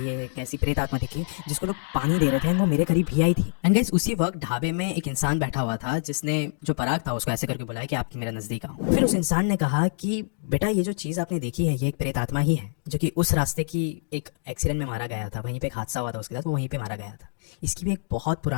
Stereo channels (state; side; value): silent; right; digital silence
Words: एक ऐसी प्रेत आत्मा दिखी जिसको लोग पानी दे रहे थे एंड वो मेरे करीब ही आई थी। एंड गाइस उसी वक्त ढाबे में एक इंसान बैठा हुआ था जिसने जो पराग था उसको ऐसे करके बुलाया कि आप मेरे नजदीक आओ। फिर उस इंसान ने कहा कि बेटा ये जो चीज़ आपने देखी है ये एक प्रेत आत्मा ही है जो कि उस रास्ते की एक एक्सीडेंट में मारा गया था, वहीं पे एक हादसा हुआ था उसके साथ, वो वहीं पे मारा गया था। इसकी भी एक बहुत